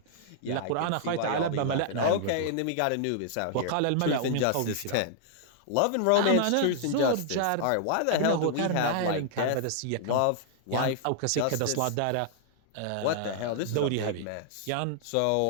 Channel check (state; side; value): different; both; correlation -0.01